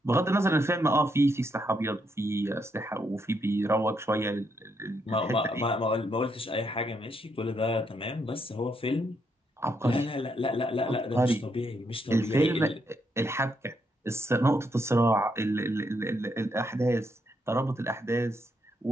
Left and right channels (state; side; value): normal; both; correlation 0.77